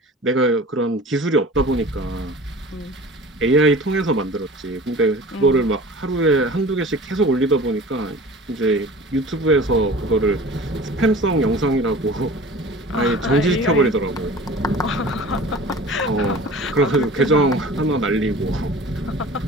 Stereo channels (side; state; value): both; normal; correlation 0.41